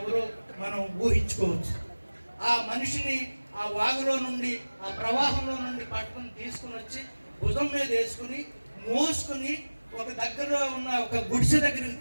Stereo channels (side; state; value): both; inverted; correlation -1.00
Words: మనం ఊహించుకోవచ్చు. ఆ మనిషిని ఆ వాగులో నుండి, ఆ ప్రవాహంలో నుండి పట్టుకుని తీసుకుని వచ్చి భుజం మీద వేసుకుని మోసుకుని ఒక దగ్గరలో ఉన్న ఒక గుడిసె దగ్గరికి